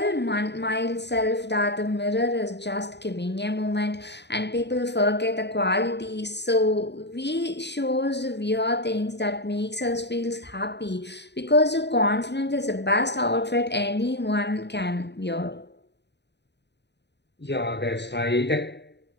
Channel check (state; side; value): late; right; 0.50 ms